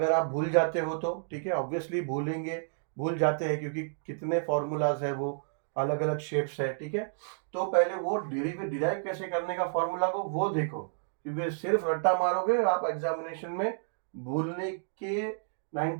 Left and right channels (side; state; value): left; silent; digital silence